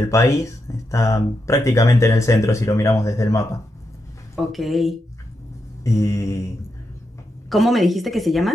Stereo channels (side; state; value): both; normal; correlation 0.84